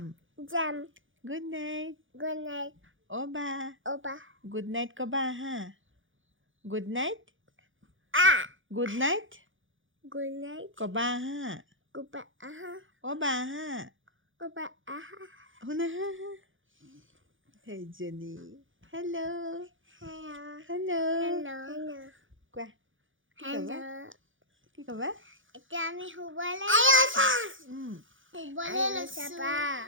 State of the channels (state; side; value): late; left; 0.57 ms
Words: গুড নাইট অ' বা গুড নাইট ক'বা হা গুড নাইট ক'বা হা অ' বা হা শুনা হা সেইজনী হেল্ল' কোৱা কি ক'বা এতিয়া আমি শুবলৈ লৈছো